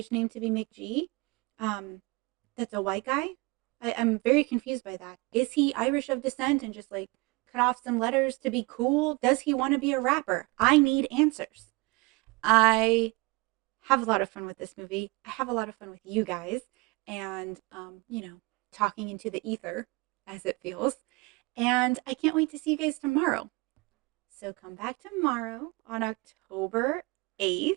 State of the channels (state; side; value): quieter; left; 25.9 dB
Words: name to be McG. That's a white guy. I'm very confused by that. Is he Irish of descent and just like cut off some letters to be cool? Does he want to be a rapper? I need answers. I have a lot of fun with this movie. I have a lot of fun with you guys and, talking into the ether as it feels. And I can't wait to see you guys tomorrow. So come back tomorrow on October 8th